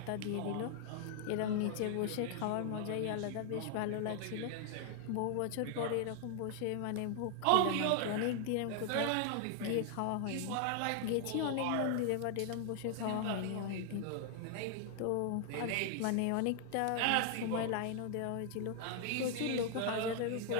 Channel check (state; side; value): different; both; correlation 0.00